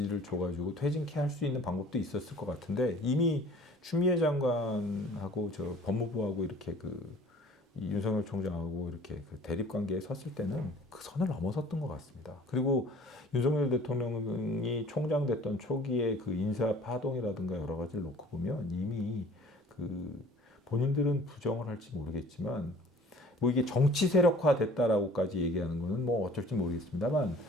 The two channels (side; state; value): both; normal; correlation 0.50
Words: 줘가지고 퇴진케 할 수 있는 방법도 있었을 것 같은데 이미 추미애 장관하고 법무부하고 이렇게 이 윤석열 총장하고 이렇게 대립 관계에 섰을 때는 그 선을 넘어섰던 것 같습니다. 그리고 윤석열 대통령이 총장 됐던 초기에 그 인사 파동이라든가 여러 가지를 놓고 보면 이미 본인들은 부정을 할지 모르겠지만 뭐 이게 정치 세력화 됐다라고까지 얘기하는 거는 뭐 어쩔지 모르겠습니다만